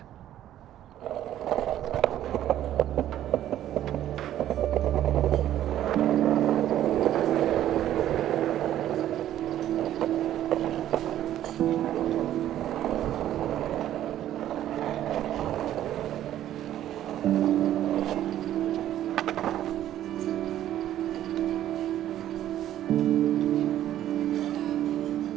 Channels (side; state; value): left; quieter; 12.2 dB